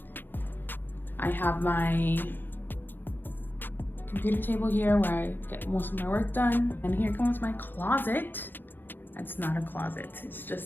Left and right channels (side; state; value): right; late; 0.095 ms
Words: I have my computer table here where I get most of my work done. And here comes my closet. It's not a closet, it's